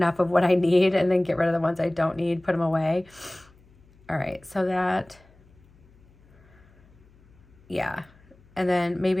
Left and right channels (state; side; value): noise; left; hum, 29 dB below the sound